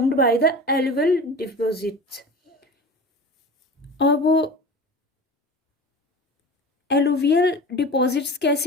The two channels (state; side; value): normal; both; correlation 0.35